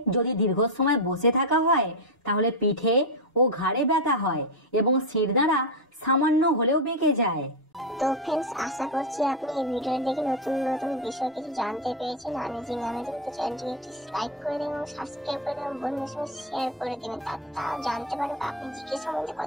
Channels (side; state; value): both; normal; correlation 0.07